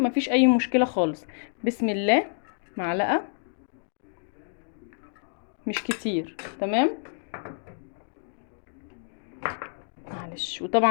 اي مشكله خالص. بسم الله. معلقه، مش كتير. تمام، معلش.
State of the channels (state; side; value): silent; right; digital silence